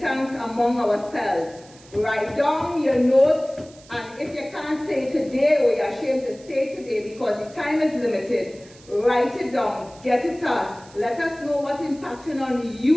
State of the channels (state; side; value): noise; right; hiss, 24 dB below the sound